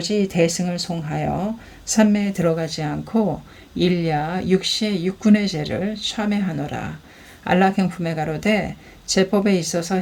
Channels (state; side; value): identical; both; correlation 1.00